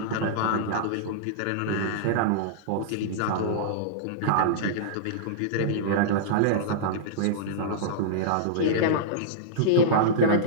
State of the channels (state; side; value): different; both; correlation -0.03